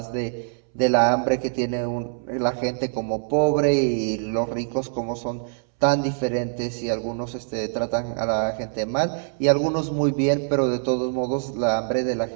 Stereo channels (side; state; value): left; silent; 63 dB below the other